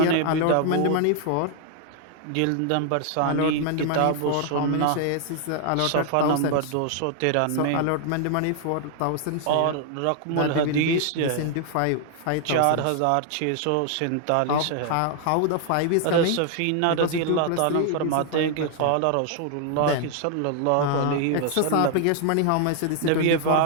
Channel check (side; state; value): both; different; correlation 0.00